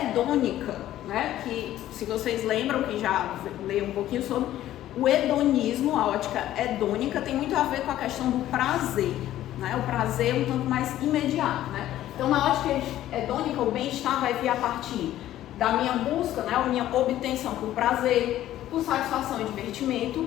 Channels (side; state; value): right; quieter; 13.3 dB